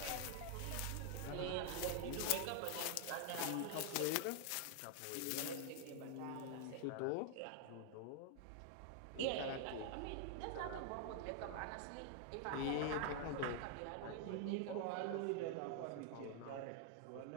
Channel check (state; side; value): different; both; correlation 0.00